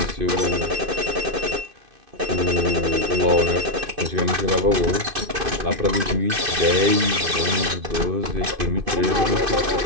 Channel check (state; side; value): late; left; 2.5 ms